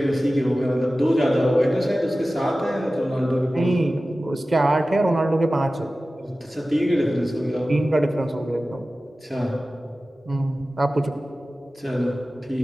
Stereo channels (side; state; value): both; normal; correlation 0.96